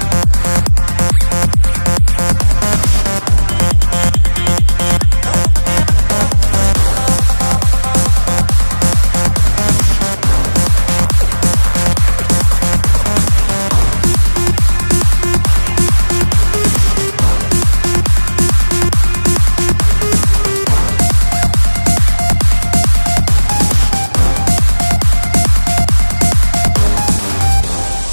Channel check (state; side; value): inverted; both; correlation -1.00